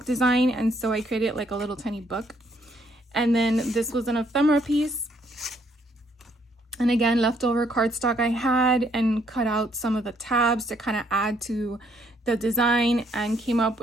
design, and so I created like a little tiny book. And then this was an ephemera piece, and again, leftover cardstock I had, and cut out some of the tabs to kind of add to the design, and came up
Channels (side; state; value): both; normal; correlation 0.69